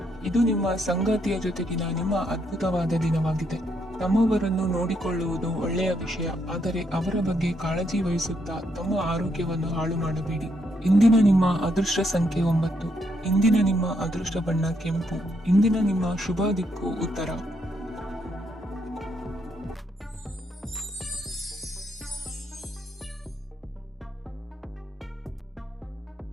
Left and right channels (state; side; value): normal; both; correlation 0.76